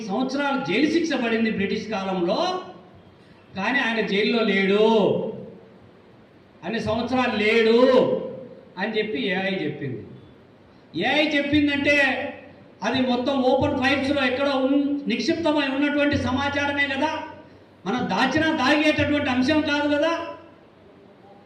సంవత్సరాలు జైలు శిక్ష పడింది బ్రిటిష్ కాలంలో, కానీ ఆయన జైల్లో లేడు, అన్ని సంవత్సరాలు లేడు అని చెప్పి ఏఐ చెప్పింది. ఏఐ చెప్పిందంటే అది మొత్తం ఓపెన్ ఫైల్స్లో ఎక్కడో నిక్షిప్తమై ఉన్నటువంటి సమాచారమే కదా, మనం దాగేటటువంటి అంశం కాదు కదా.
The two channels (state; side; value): identical; both; correlation 1.00